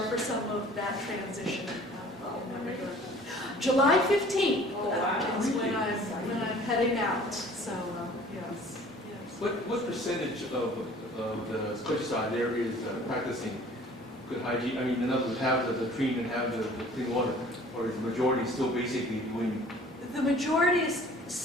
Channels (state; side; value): normal; both; correlation 0.50